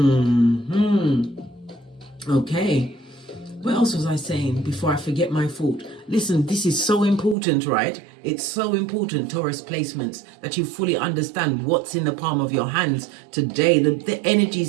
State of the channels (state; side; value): drops out; left; at 7.4 s